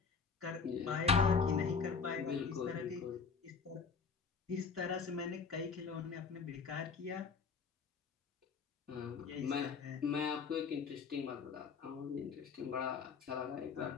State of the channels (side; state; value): right; quieter; 5.4 dB